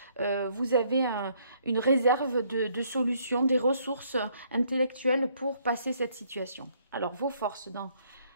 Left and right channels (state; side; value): inverted; both; correlation -0.67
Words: vous avez une réserve de solutions, des ressources intellectuelles pour passer cette situation. Alors, vos forces dans